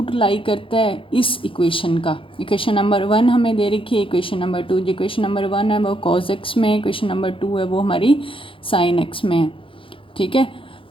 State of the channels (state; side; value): late; right; 0.25 ms